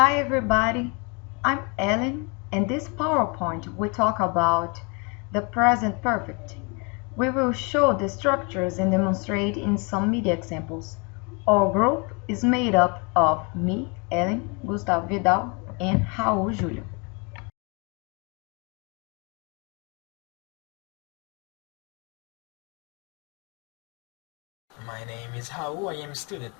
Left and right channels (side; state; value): right; quieter; 32.0 dB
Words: everybody, I'm Ellen and this PowerPoint we talk about the present perfect. We will show the structures and demonstrate in some media examples. Our group is made up of me, Ellen, Gustavo Vidal and Raul Júlio. My name is Raul, I am a student